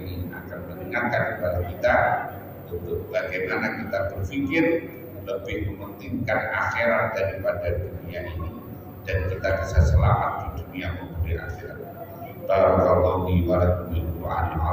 akan mengingatkan mengingatkan kepada kita untuk bagaimana kita berpikir lebih mementingkan akhirat daripada dunia ini, dan kita bisa selamat di dunia maupun di akhirat. Barakallahu li wa lakum bil Qur'anil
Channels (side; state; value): both; identical; correlation 1.00